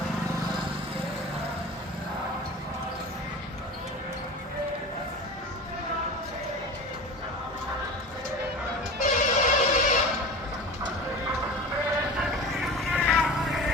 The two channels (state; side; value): normal; both; correlation 0.33